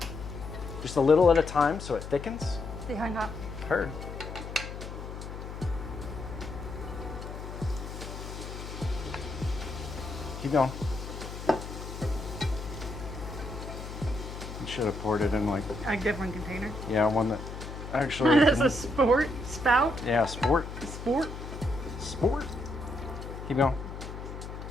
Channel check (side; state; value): left; noise; hum, 9 dB below the sound